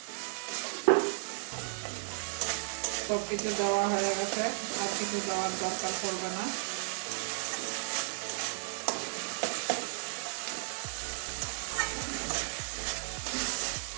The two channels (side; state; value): left; silent; digital silence